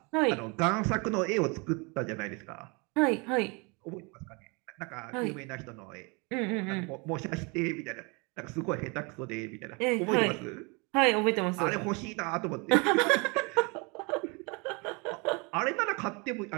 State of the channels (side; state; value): left; quieter; 29.9 dB